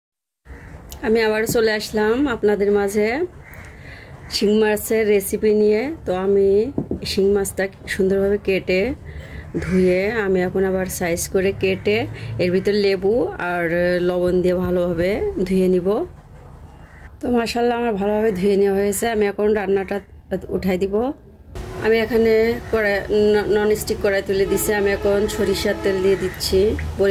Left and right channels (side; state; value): both; identical; correlation 1.00